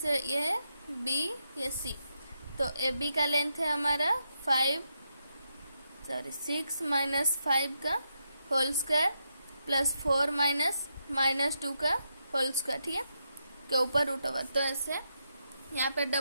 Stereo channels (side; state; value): both; inverted; correlation -0.83